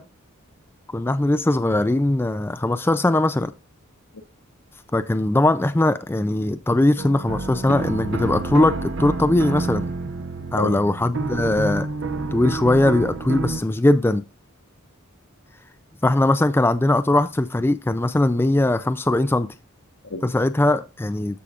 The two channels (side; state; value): both; normal; correlation 0.87